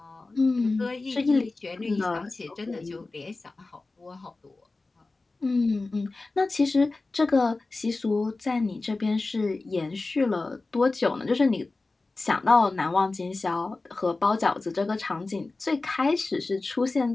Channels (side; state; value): right; quieter; 3.4 dB